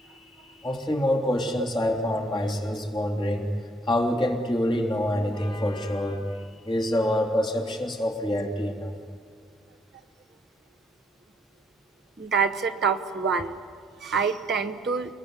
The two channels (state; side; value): normal; both; correlation 0.69